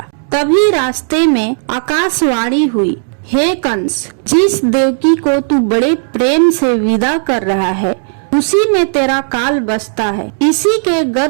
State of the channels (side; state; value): left; silent; digital silence